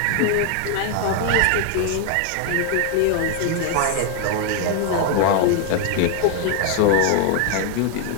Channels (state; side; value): different; both; correlation 0.00